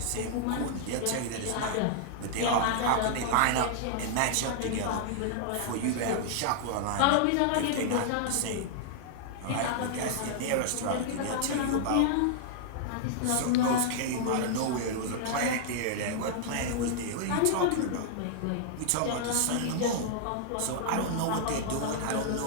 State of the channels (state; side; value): different; both; correlation -0.01